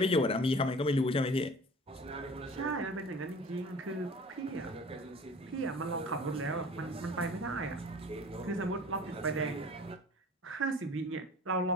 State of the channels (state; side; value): normal; both; correlation 0.44